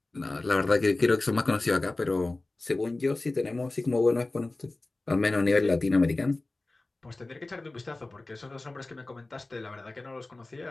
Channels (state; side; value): quieter; right; 3.0 dB